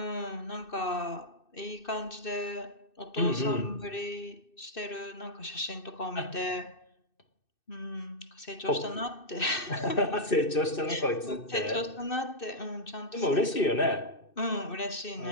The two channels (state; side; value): late; right; 2.6 ms